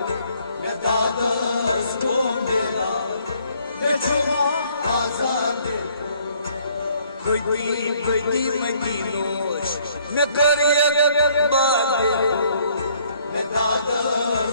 Medadas beda me chuma zadeko Khudi madinosh me kar yakbadeko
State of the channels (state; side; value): inverted; both; correlation -0.63